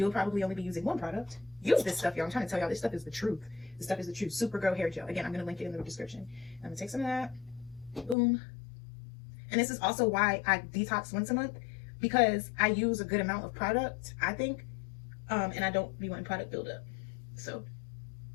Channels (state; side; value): drops out; right; at 8.2 s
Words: probably only be using one product. Use this stuff, y'all. I'm trying to tell y'all, this stuff is the truth. This stuff is the truth. Supergirl hair gel. Again, I'm going to link it in the description. I'm going to take some of that. Boom. And this is also why I detox once a month, because I use a good amount of product, I think, and I don't be wanting product buildup. So,